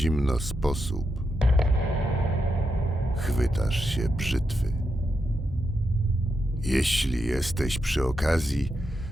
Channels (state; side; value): normal; both; correlation 0.85